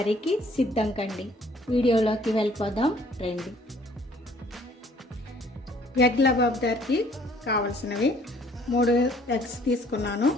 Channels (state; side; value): normal; both; correlation 0.59